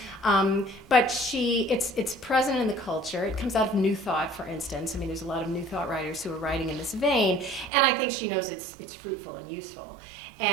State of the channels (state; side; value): drops out; left; at 7.7 s